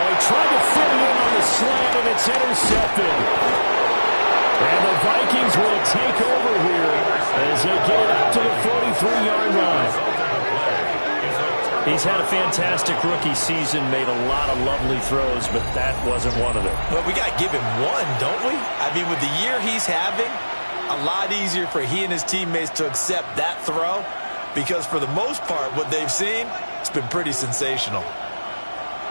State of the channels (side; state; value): both; inverted; correlation -1.00